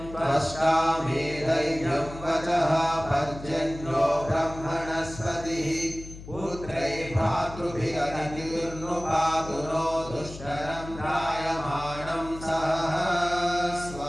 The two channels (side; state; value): left; noise; hum, 14 dB below the sound